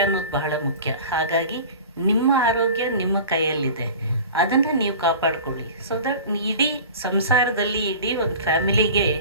ಅನ್ನೋದು ಬಹಳ ಮುಖ್ಯ. ಹಾಗಾಗಿ ನಿಮ್ಮ ಆರೋಗ್ಯ ನಿಮ್ಮ ಕೈಯಲ್ಲಿದೆ, ಅದನ್ನು ನೀವು ಕಾಪಾಡ್ಕೊಳ್ಳಿ. ಸೊ ದಟ್ ಇಡೀ ಸಂಸಾರದಲ್ಲಿ, ಇಡೀ ಒಂದು ಫ್ಯಾಮಿಲಿಗೆ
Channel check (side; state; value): both; inverted; correlation -0.38